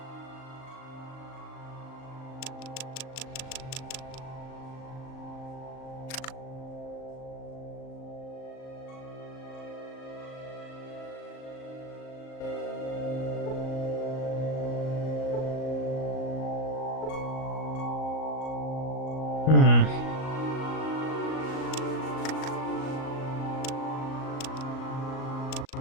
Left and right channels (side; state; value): right; late; 38 ms